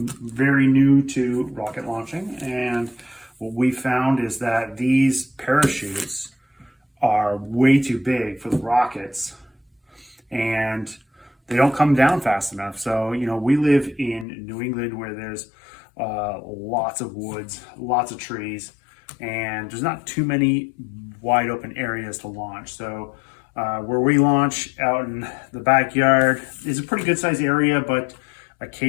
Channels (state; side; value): drops out; right; at 14.2 s